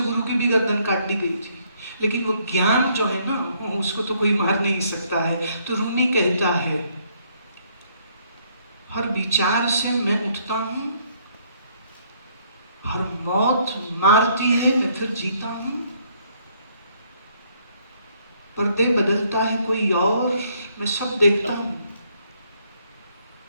गुरु की भी गर्दन काट दी गई थी। लेकिन वो ज्ञान जो है ना, उसको तो कोई मार नहीं सकता है। तो रूमी कहता है, हर विचार से मैं उठता हूं, हर मौत मारती है मैं फिर जीता हूं, पर्दे बदलता है कोई और, मैं सब देखता हूं।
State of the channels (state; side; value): inverted; both; correlation -0.68